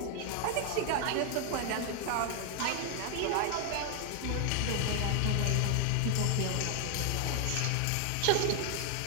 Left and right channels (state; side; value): different; both; correlation 0.00